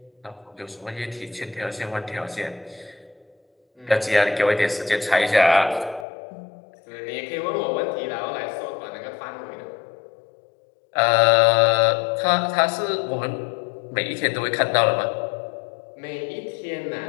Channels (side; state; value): right; drops out; at 6.1 s